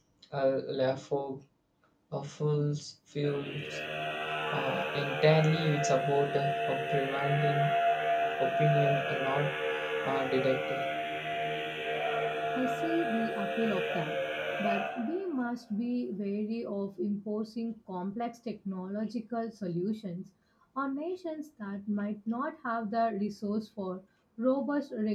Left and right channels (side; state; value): both; identical; correlation 1.00